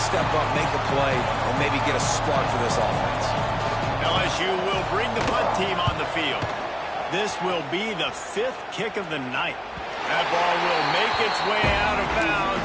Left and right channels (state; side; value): identical; both; correlation 1.00